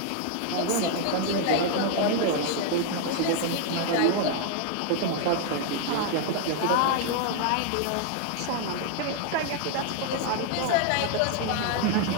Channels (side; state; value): both; different; correlation 0.00